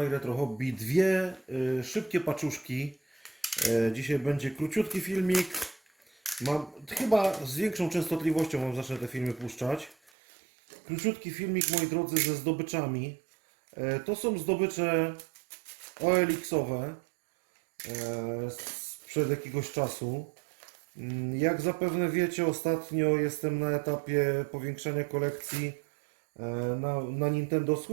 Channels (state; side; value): drops out; left; at 10.1 s